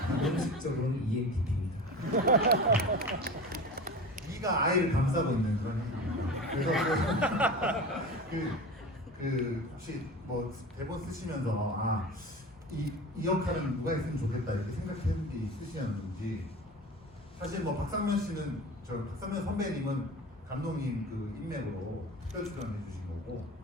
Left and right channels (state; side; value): normal; both; correlation 0.32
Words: 공식적으로는 ENTP입니다. E가 I를 감싸고 있는 그런 행동입니다. 그래서 혹시 뭐 대본 쓰시면서 이 역할은 누가 했으면 좋겠다 이렇게 생각했는 게 있으셨는지 사실 뭐 박상면 씨는 박상면 선배님은 감독님 그 인맥으로 특별 출연해 주신 거고